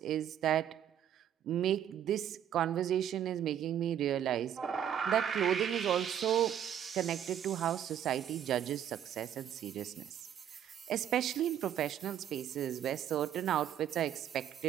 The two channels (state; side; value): quieter; left; 9.9 dB